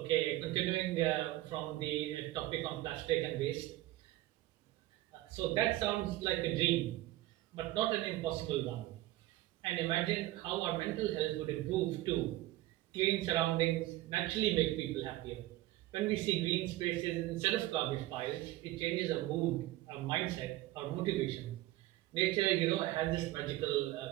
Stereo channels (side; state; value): left; quieter; 16.6 dB